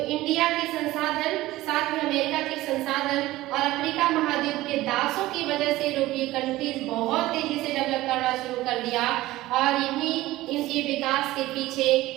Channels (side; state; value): left; quieter; 17.2 dB